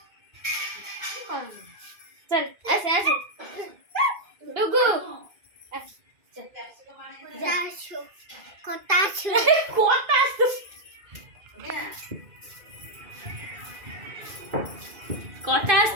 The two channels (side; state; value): left; late; 2.4 ms